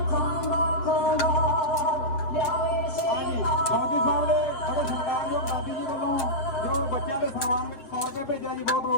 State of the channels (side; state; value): right; late; 7.3 ms